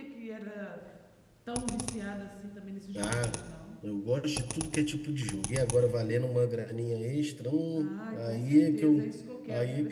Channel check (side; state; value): both; identical; correlation 1.00